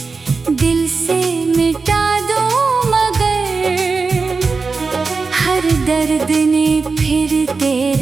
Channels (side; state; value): left; quieter; 4.4 dB